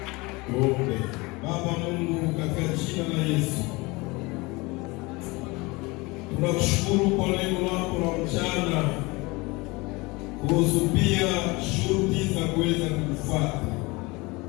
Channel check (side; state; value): right; quieter; 24.3 dB